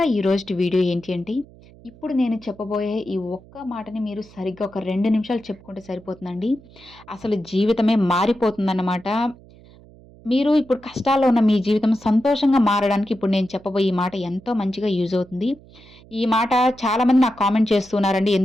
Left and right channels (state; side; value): noise; right; hum, 24 dB below the sound